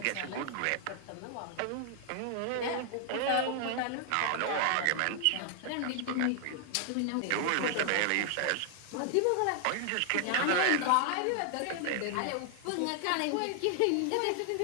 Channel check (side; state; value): both; different; correlation 0.00